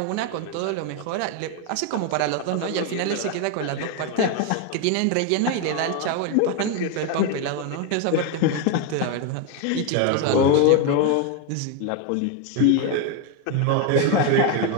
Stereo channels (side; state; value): both; different; correlation 0.01